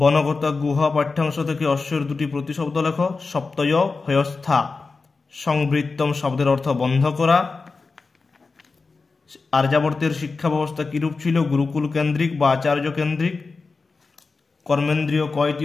গুহা পাঠ্যাংশ থেকে অশ্বর দুটি প্রতিশব্দ লেখ। সপ্তয় হয়স্থা। সংবৃত্তম শব্দের অর্থ বন্ধ করা। আর্যাবর্তের শিক্ষা ব্যবস্থা কিরূপ ছিল? গুরুকুল কেন্দ্রিক বা আচার্য কেন্দ্রিক। কর্মেন্দ্রিয় কয়টি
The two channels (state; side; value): quieter; right; 4.2 dB